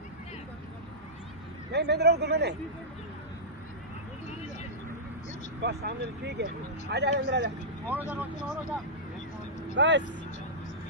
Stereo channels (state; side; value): normal; both; correlation -0.14